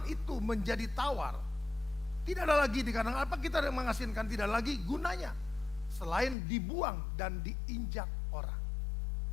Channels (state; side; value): drops out; right; at 6.4 s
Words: itu menjadi tawar, tidak ada lagi dikatakan apa kita mengasinkan, tidak lagi gunanya selain dibuang dan diinjak orang.